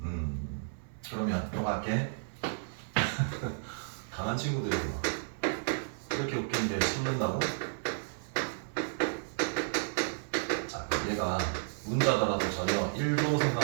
그러면 또 갈게. 강한 친구들이 막 이렇게 웃기는데 숨는다고? 자, 그럼 얘가 문자더라도 전혀 1도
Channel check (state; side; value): silent; left; 56 dB below the other